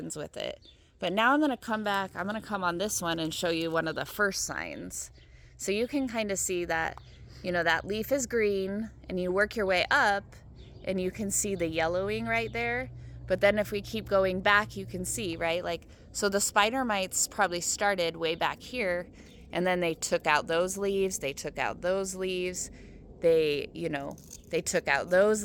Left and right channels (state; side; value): identical; both; correlation 1.00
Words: with it. But now I'm going to come back. I'm going to come on this one and show you one of the first signs. So you can kind of see that, that leaf is green, and you work your way up and you can see the yellowing right there. But then if we keep going back, you can see, right? Like, so the spider mites probably started way back here, and then they took out those leaves. They took out those leaves. They took out